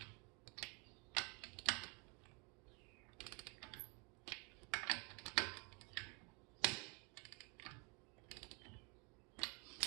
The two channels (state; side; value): quieter; left; 32.3 dB